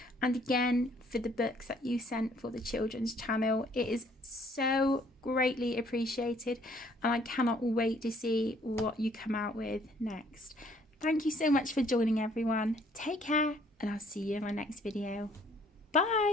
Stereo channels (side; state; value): both; normal; correlation 0.62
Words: and again for the books that you sent for the children's channel. It is so greatly appreciated and I cannot wait to see what you come out with next. Thank you so much for joining everyone. Take care and I'll see you in my next video.